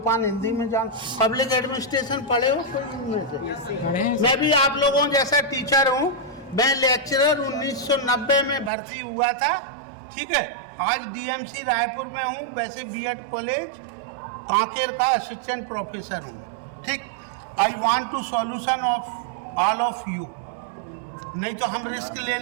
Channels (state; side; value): drops out; left; at 8.7 s